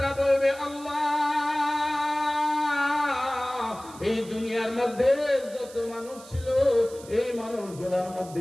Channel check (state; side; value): noise; right; hiss, 19 dB below the sound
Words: বলবে, আল্লাহ, এই দুনিয়ার মধ্যে যত মানুষ ছিল, এই মানুষগুলোর